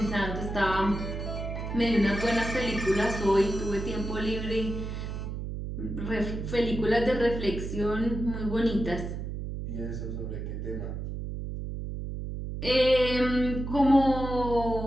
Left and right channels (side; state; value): right; noise; hum, 5 dB below the sound